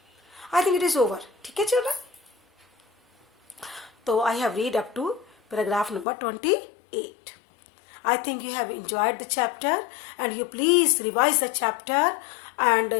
I think it is over. ठीक है चिल्ड्रन, तो I have read up to paragraph number 28. I think you have enjoyed the chapter, and you please revise the chapter and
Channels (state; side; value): drops out; right; at 6.1 s